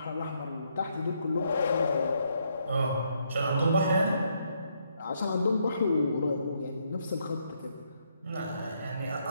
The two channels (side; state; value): both; inverted; correlation -0.74